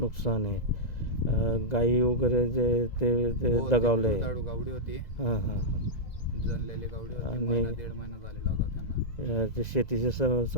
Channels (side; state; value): right; late; 1.9 ms